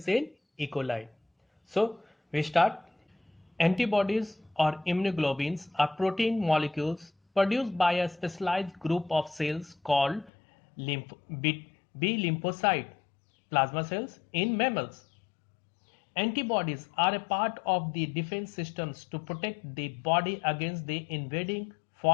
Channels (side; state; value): right; drops out; at 10.3 s